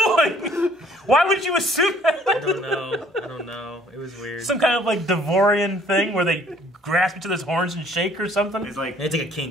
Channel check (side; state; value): both; normal; correlation 0.58